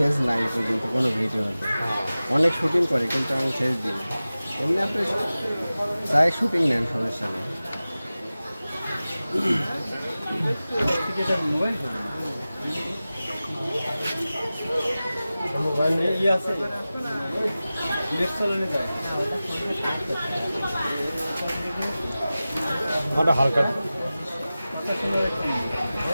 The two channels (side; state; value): both; inverted; correlation -0.96